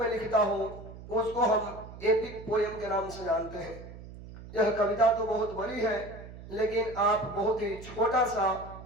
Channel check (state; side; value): noise; right; hum, 15 dB below the sound